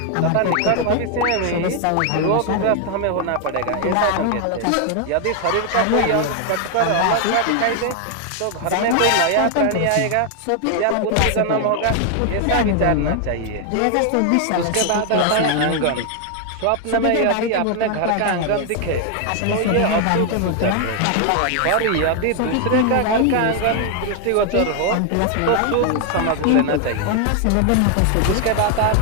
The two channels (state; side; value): different; both; correlation 0.00